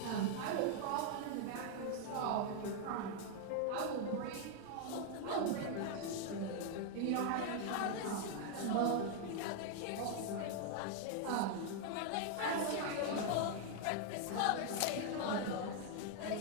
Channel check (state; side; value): different; both; correlation 0.00